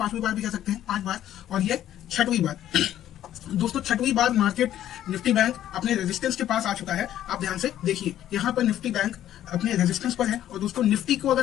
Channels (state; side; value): quieter; right; 11.9 dB